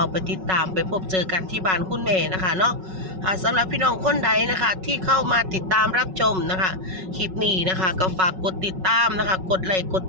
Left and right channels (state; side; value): late; left; 5.4 ms